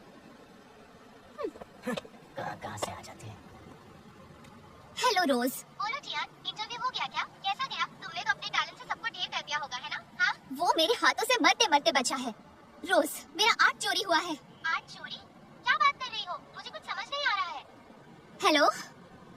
कहाँ से आ जाते हैं? हेलो रोज। बोलो टियान, इंटरव्यू हो गया क्या? कैसा गया? तुमने तो अपने टैलेंट से सबको ढेर कर दिया होगा, है ना? हाँ? वो मेरे हाथों से मरते मरते बचा है। रोज, मेरा आर्ट चोरी हुआ है। आर्ट चोरी? क्या बात कर रही हो? मुझे कुछ समझ नहीं आ रहा है। हेलो,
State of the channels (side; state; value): both; identical; correlation 1.00